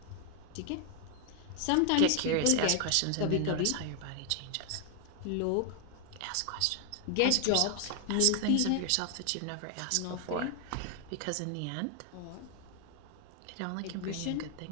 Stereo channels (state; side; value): different; both; correlation 0.00